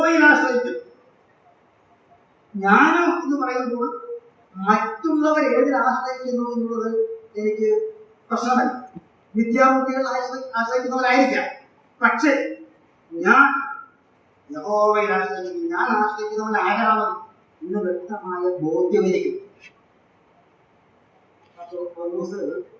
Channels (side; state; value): both; identical; correlation 1.00